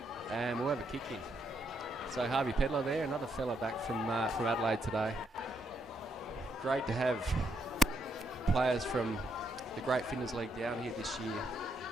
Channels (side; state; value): both; normal; correlation 0.76